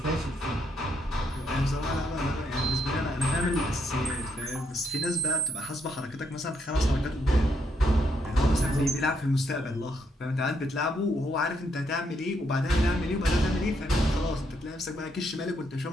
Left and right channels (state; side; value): normal; both; correlation 0.76